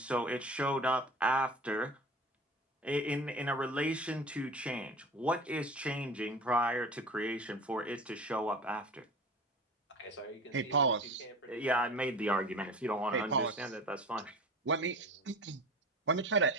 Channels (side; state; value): both; normal; correlation 0.36